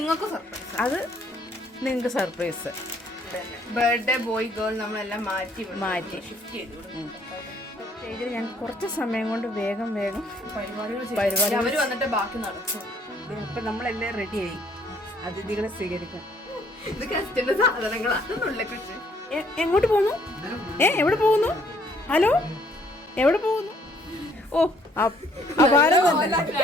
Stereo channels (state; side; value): normal; both; correlation 0.64